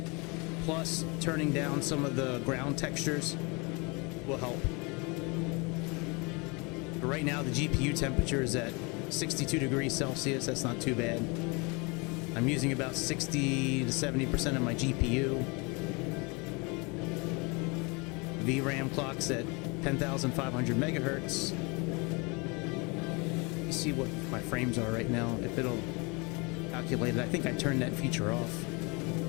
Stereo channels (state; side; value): quieter; right; 29.1 dB